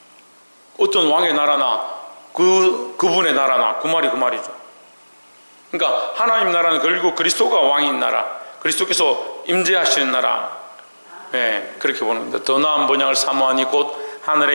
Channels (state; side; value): inverted; both; correlation -1.00